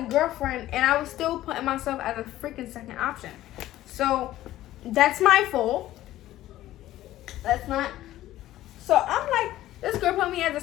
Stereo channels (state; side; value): quieter; right; 14.5 dB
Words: girlfriend, and I was still putting myself as a freaking second option. So that's my fault. That's not. So I'm like, this girl put me as